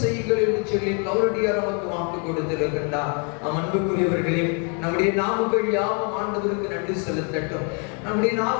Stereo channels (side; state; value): right; quieter; 38.5 dB